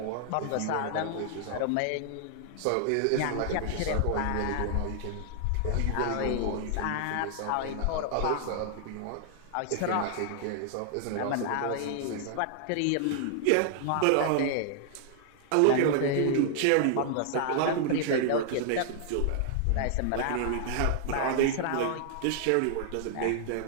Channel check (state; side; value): different; both; correlation -0.01